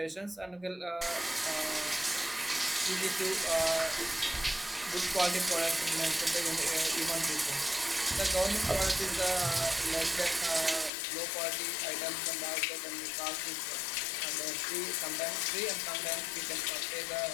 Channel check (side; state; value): right; drops out; at 10.9 s